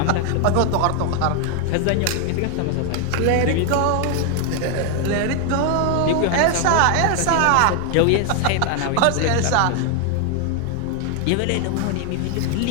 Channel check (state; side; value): different; both; correlation 0.01